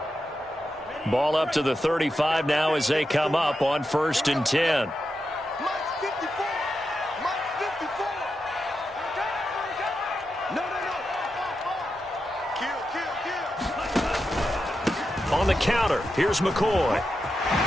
Ball up to the 35 now as they come up on 1st and 10. On the counter, here's McCoy.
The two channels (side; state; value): both; normal; correlation 0.88